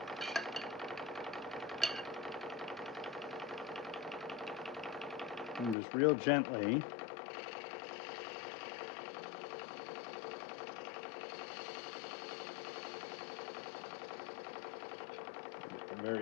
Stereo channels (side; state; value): right; drops out; at 5.8 s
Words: And just real gently at the